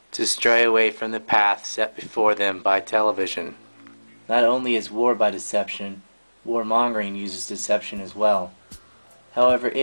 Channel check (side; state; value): both; inverted; correlation -1.00